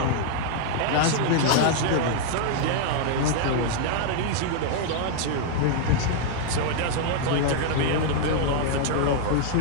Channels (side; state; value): both; different; correlation 0.00